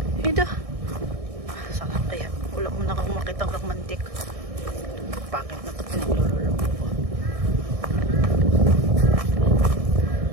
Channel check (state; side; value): late; left; 1.6 ms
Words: Ito. Saan kaya? Wala mo na akong makitang romantic. Bakit na ito pinaglulolo ko?